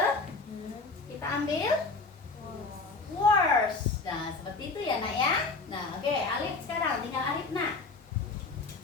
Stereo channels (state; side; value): quieter; right; 4.0 dB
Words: Kita ambil. was Worst. Nah, seperti itu ya, Nak ya. Nah, oke, Alif sekarang tinggal Alif, Nak.